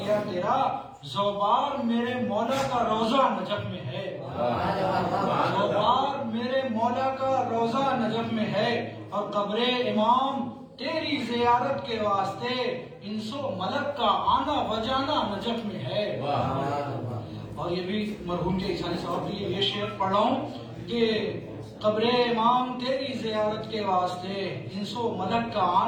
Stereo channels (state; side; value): identical; both; correlation 1.00